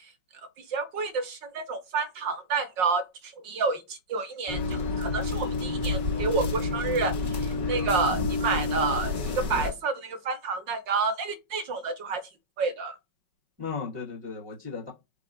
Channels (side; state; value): left; late; 5.6 ms